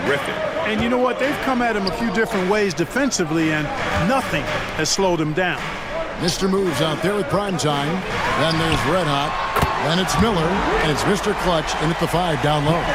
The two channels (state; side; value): identical; both; correlation 1.00